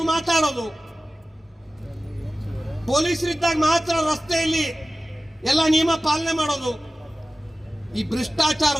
ಮಾತಾಡೋದು, ಪೊಲೀಸರಿದ್ದಾಗ ಮಾತ್ರ ರಸ್ತೆಯಲ್ಲಿ ಎಲ್ಲ ನಿಯಮ ಪಾಲನೆ ಮಾಡೋದು, ಈ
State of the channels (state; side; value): normal; both; correlation 0.96